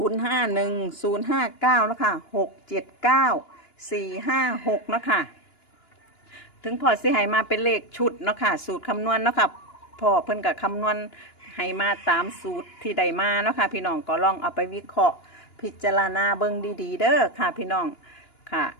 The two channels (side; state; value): right; late; 2.9 ms